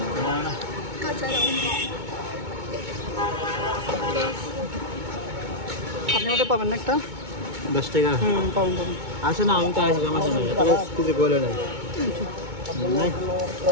না না। আপনি আমাদের পাবেন না একটা? 10 টাকা। পাবেন পাবেন। আসে না, আমি তো আসি আমার সঙ্গে কিছু বলে নাই।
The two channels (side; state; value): left; late; 2.2 ms